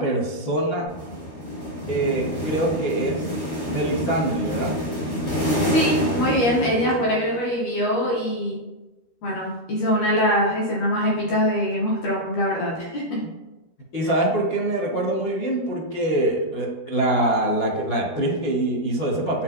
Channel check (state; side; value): late; right; 13 ms